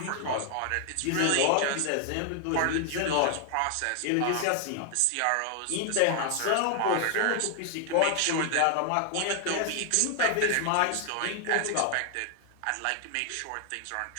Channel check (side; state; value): both; different; correlation 0.00